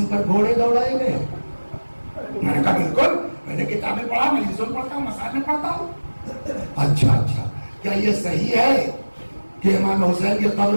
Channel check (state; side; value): inverted; both; correlation -1.00